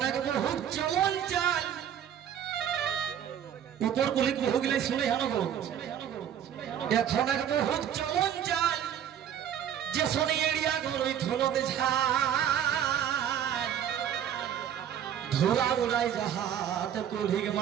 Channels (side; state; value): left; quieter; 9.6 dB